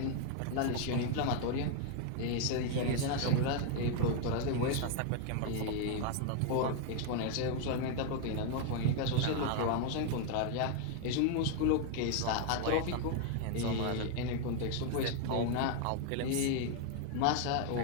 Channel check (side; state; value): both; different; correlation 0.00